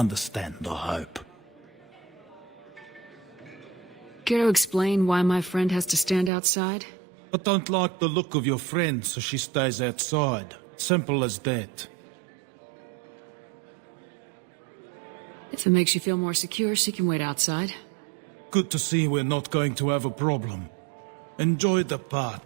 I hope. Care to explain why my friend has to stand outside? I don't like the look of your friend, so she stays outside. Simple as that. If it makes you feel more secure, she can wait outside. Good to see we're not going to have a problem. Enjoy the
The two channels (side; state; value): left; drops out; at 6.3 s